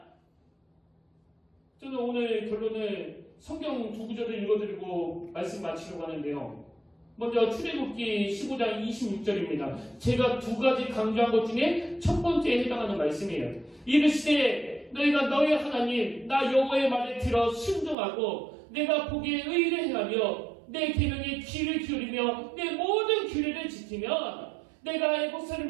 저는 오늘 결론을 성경 두 구절을 읽어드리고 말씀 마치려고 하는데요. 먼저 출애굽기 15장 26절입니다. 제가 두 가지 강조한 것 중에 첫 번째에 해당하는 말씀이에요. 이르시되 너희가 너희 하나님 나 여호와의 말을 들어 순종하고 내가 보기에 의를 행하며 내 계명에 귀를 기울이며 내 모든 규례를 지키면 내가 애국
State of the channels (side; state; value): left; drops out; at 17.9 s